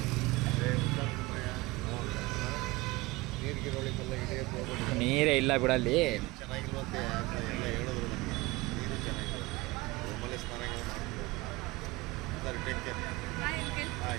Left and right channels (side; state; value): left; quieter; 21.8 dB